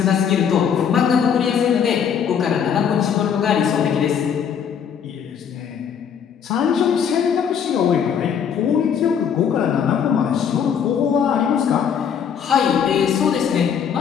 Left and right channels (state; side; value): quieter; right; 7.7 dB